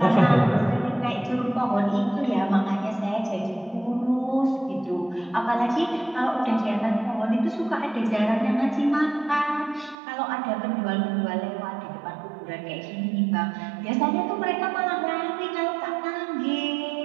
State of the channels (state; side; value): drops out; left; at 10.0 s